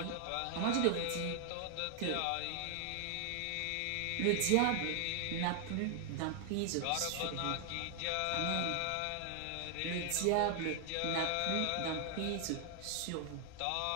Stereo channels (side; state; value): both; different; correlation 0.00